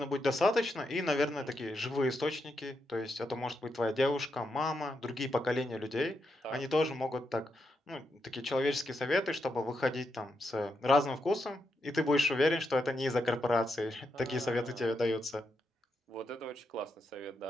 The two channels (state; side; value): normal; both; correlation 0.83